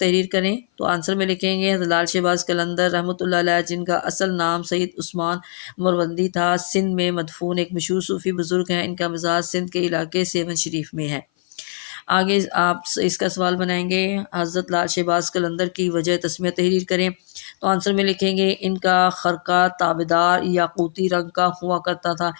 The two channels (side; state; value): right; silent; 57 dB below the other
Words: کریں۔ تو آنسر میں لکھیں گے حضرت لال شہباز قلندر رحمۃ اللہ علیہ، جن کا اصل نام سید عثمان مروندی تھا، سندھ میں مدفون ایک مشہور صوفی بزرگ ہیں۔ ان کا مزار سندھ کے علاقے سیون شریف میں ہے۔ آگے آپ اس کا سوال بنائیں گے، حضرت لال شہباز قلندر کی وجہ تسمیہ تحریر کریں۔ تو آنسر میں لکھیں گے ان کا خرقہ تابدار یاقوتی رنگ کا ہوا کرتا تھا،